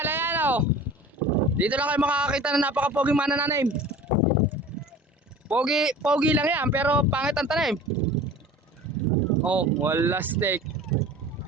ayan oh. Dito lang kayo makakakita na napaka-poging manananim. Pogi lang yan, pero pangit ang tanim. Oh, wala steak.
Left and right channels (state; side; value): normal; both; correlation 0.41